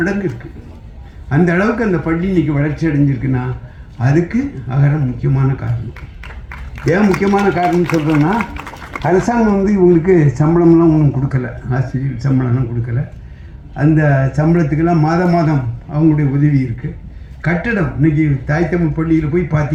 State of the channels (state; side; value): identical; both; correlation 1.00